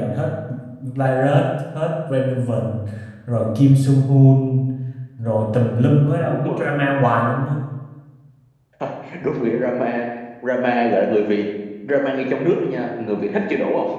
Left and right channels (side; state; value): both; identical; correlation 1.00